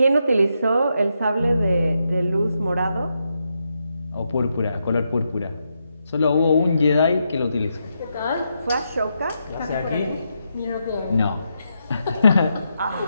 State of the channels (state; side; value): inverted; both; correlation -0.83